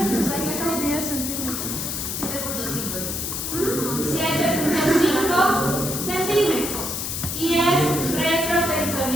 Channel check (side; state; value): left; noise; hiss, 3 dB below the sound